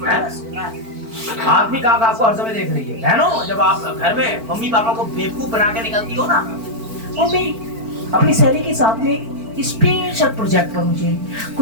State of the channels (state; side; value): late; left; 4.5 ms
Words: आदमी का आपको हर समय देख रही है। बहनों, जब आप घर में मम्मी पापा को बेवकूफ बना के निकलती हो ना, मम्मी अपनी सहेली के साथ में स्पेशल प्रोजेक्ट पर मुझे